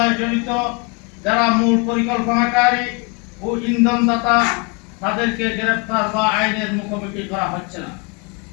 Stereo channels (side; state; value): right; quieter; 30.7 dB